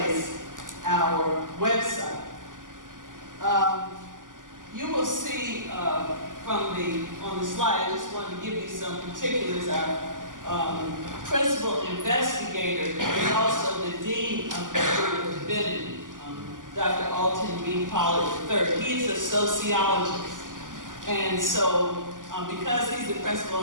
our website. You will see on the slide, I just wanted to give you some particulars. Our principal investigator is also the Dean of the School of Divinity, Dr. Alton B. Pollard III. He is a sociologist. And so, because he's the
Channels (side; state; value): left; late; 0.88 ms